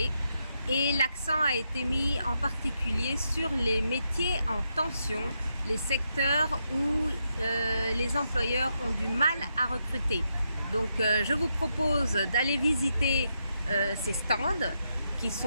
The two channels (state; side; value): inverted; both; correlation -0.82